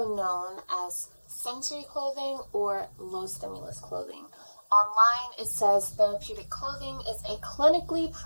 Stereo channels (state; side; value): inverted; both; correlation -1.00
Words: known as sensory clothing or low stimulus clothing. Online, it says therapeutic clothing is a clinically